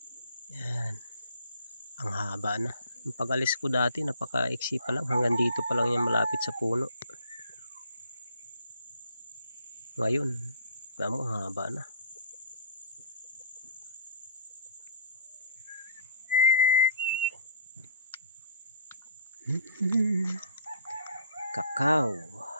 Ayan. Ang haba na. Yung pag-alis ko dati, napaka-iksi pa lang. Hanggang dito pa lang yan malapit sa puno. Ngayon, tamo, haba na. Kakao.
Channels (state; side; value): inverted; both; correlation -0.54